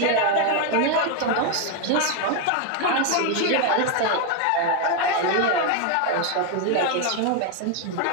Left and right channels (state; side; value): different; both; correlation 0.01